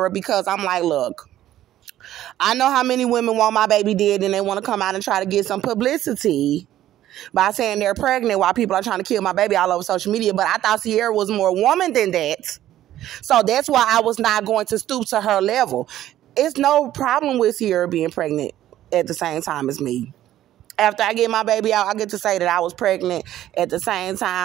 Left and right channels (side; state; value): left; quieter; 13.0 dB